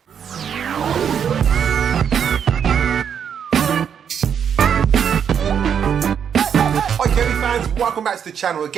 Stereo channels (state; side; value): quieter; left; 7.9 dB